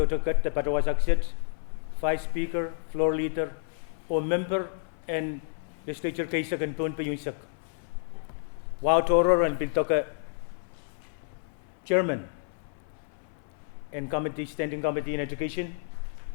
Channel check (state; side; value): silent; right; 58 dB below the other